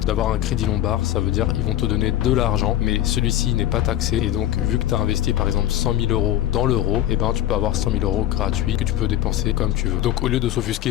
d'avoir un crédit lombard. Ça veut dire ils vont te donner de l'argent, mais celui-ci n'est pas taxé. Et donc, vu que tu as investi par exemple 100 000 euros dans l'euro, tu peux avoir 100 000 euros gratuits que tu peux dépenser comme tu veux. Donc, au lieu de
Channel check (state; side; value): quieter; right; 12.8 dB